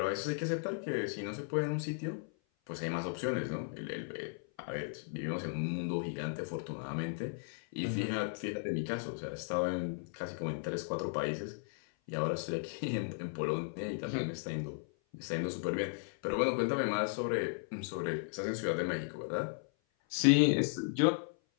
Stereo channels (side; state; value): right; silent; 54 dB below the other